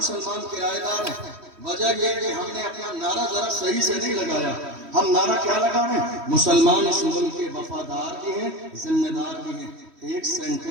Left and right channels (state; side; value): late; left; 3.1 ms